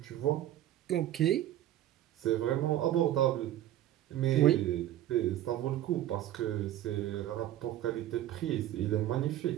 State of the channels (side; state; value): left; quieter; 13.0 dB